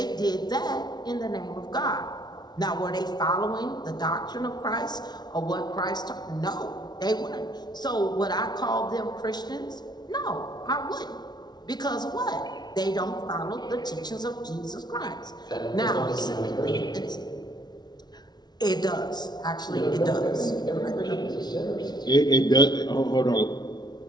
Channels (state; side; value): late; right; 0.20 ms